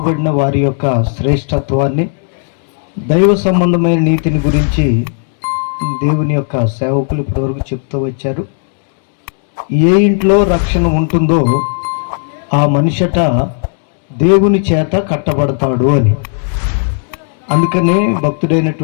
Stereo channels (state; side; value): silent; right; digital silence